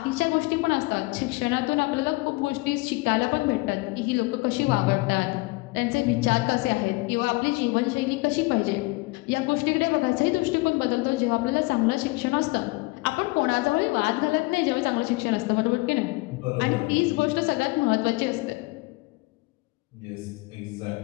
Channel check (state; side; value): quieter; right; 24.5 dB